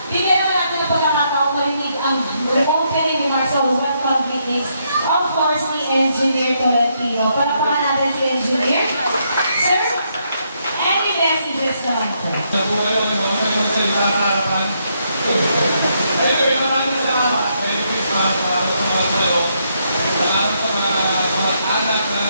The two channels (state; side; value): inverted; both; correlation -0.76